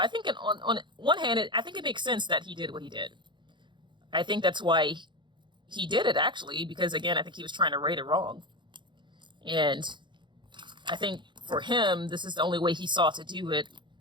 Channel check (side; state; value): left; late; 0.23 ms